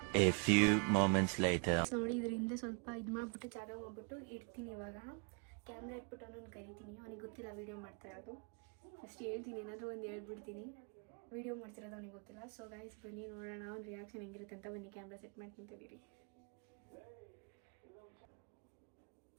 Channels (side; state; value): left; quieter; 36.0 dB